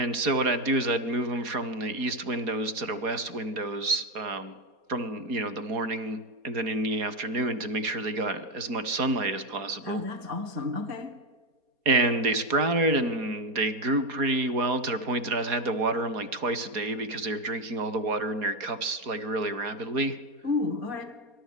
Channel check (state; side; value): late; left; 4.2 ms